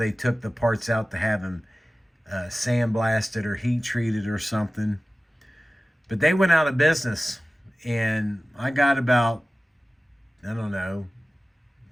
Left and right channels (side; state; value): both; normal; correlation 0.96